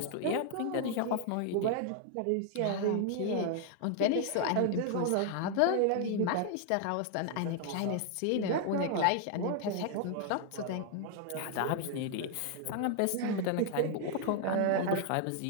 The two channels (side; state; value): both; different; correlation 0.00